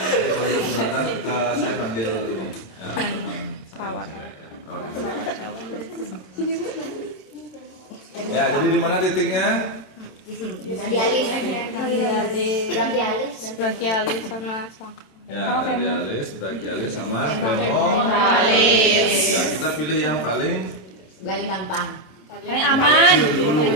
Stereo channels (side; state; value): right; late; 27 ms